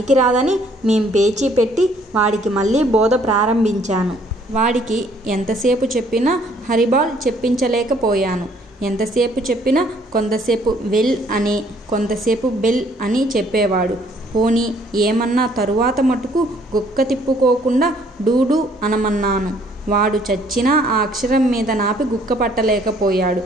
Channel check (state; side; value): normal; both; correlation 0.62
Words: మేం పేచీ పెట్టి వాడికి మళ్ళీ బోధ ప్రారంభించాను. వాడికి ఎంతసేపు చెప్పినా హరిబాల్ చెప్పించలేకపోయాను. ఎంతసేపు చెప్పినా కొంతసేపు వెల్ అని, కొంతసేపు బెల్ అని చెప్పేవాడు. పోనీ ఏమన్నా తరువాత మటుకు గుక్క తిప్పుకోకుండా డూడు అనమన్నాను. వాడు చచ్చినా ఆ అక్షరం మీద నాపి గుక్క పట్టలేకపోయాడు.